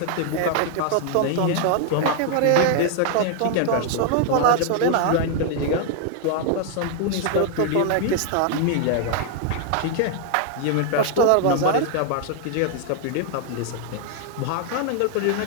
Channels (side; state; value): both; different; correlation 0.00